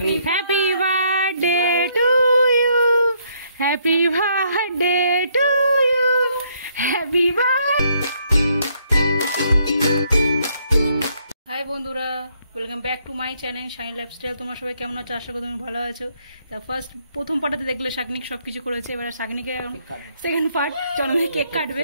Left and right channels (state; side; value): inverted; both; correlation -0.70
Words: Happy birthday to you. Happy birthday to you. Happy birthday. Hi বন্ধুরা, welcome back to my channel shiny lifestyle. তোমরা সবাই কেমন আছো? আশা করি তুমি ভালো আছো। তা প্রথম পার্টে দেখলে শাগনিক সবকিছু করেছে, এবার শাগনিকে সেকেন্ড পার্ট জন্মদিনে কেক কাটবে।